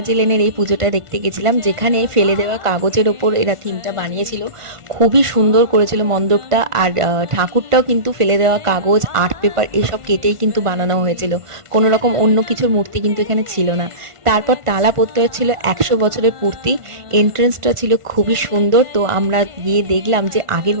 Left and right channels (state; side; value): late; left; 1.5 ms